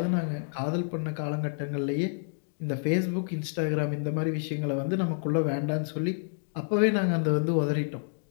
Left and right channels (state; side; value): silent; right; digital silence